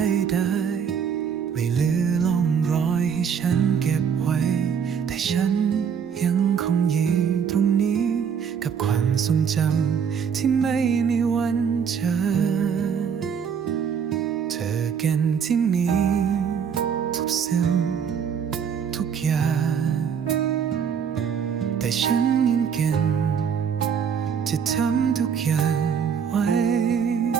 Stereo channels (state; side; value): quieter; left; 7.2 dB